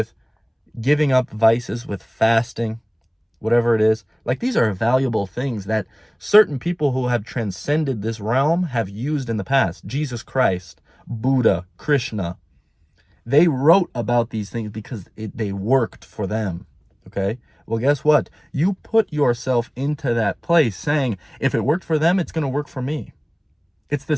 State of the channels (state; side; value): identical; both; correlation 1.00